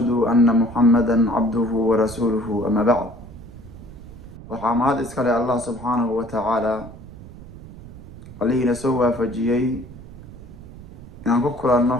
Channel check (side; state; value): right; noise; rumble, 16 dB below the sound